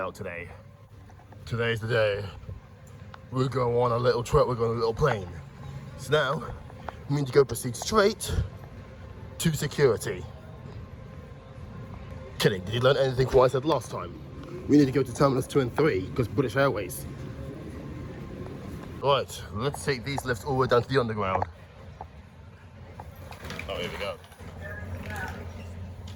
today. Today's the day. We're going on a little trip, we're going on a little plane. So now, we need to go proceed straight to security. Kidding, did you learn anything from what I said last time? We need to go to Terminals 2 and 3, because British Airways. Right, let's take these lifts all the way down to the underground. Oh, here we go.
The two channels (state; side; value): identical; both; correlation 1.00